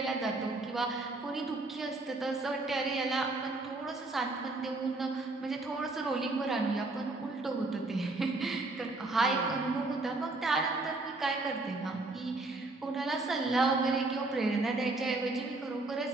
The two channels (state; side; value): quieter; left; 3.1 dB